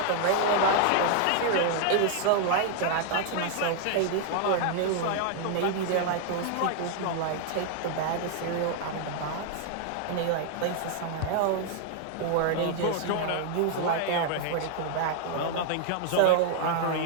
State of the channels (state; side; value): different; both; correlation 0.00